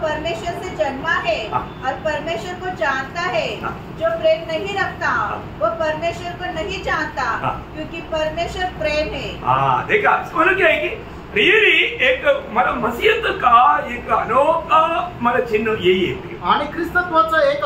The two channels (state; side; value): identical; both; correlation 1.00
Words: परमेश्वर से जन्मा है और परमेश्वर को जानता है। जो प्रेम नहीं रखता वह परमेश्वर को नहीं जानता, क्योंकि परमेश्वर प्रेम है। हाँ देखा, मतलब क्या है कि रियली एक मतलब मसीहत का एक अनोखा मतलब चिन्ह यही है, आणि ख्रिस्तत्वाचं एक